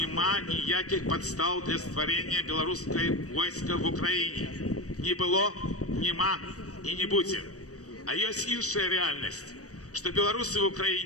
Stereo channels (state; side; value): late; right; 0.66 ms